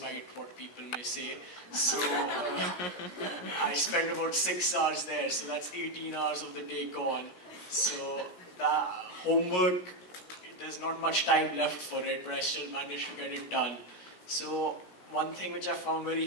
what people may say. So I spend about 6 hours there, so that's 18 hours of the day gone. So the homework, there's not much time left for it, but I still manage to get it done. So one thing which I found very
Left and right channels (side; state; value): right; late; 17 ms